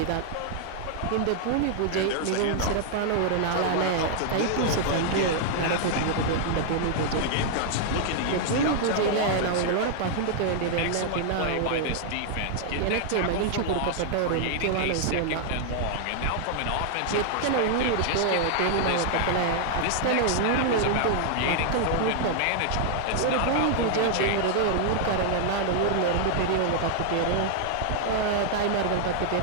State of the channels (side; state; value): both; different; correlation 0.00